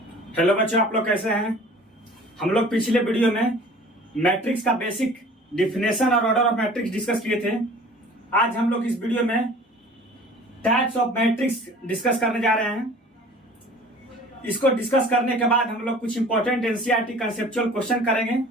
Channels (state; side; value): normal; both; correlation 0.46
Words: Hello बच्चों, आप लोग कैसे हैं। हम लोग पिछले वीडियो में मैट्रिक्स का बेसिक डिफिनेशन और ऑर्डर ऑफ मैट्रिक्स डिस्कस किए थे। आज हम लोग इस वीडियो में टाइप्स ऑफ मैट्रिक्स डिस्कस करने जा रहे हैं। इसको डिस्कस करने के बाद हम लोग कुछ इंपॉर्टेंट एनसीईआरटी कंसेप्चुअल क्वेश्चन करेंगे।